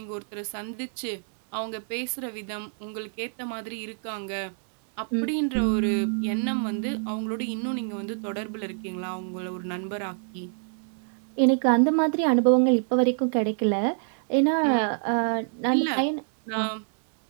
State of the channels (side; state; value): left; silent; 60 dB below the other